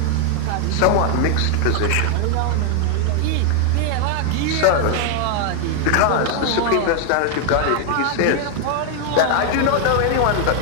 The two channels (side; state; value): both; different; correlation 0.00